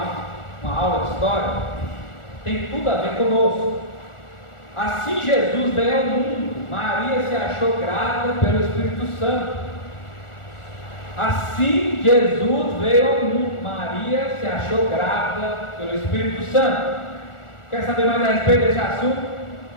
uma aula de história. Tem tudo a ver conosco. Assim Jesus veio ao mundo, Maria se achou grávida pelo Espírito Santo. Assim Jesus veio ao mundo, Maria se achou grávida pelo Espírito Santo. Quer saber mais a respeito desse assunto?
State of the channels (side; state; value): right; late; 1.4 ms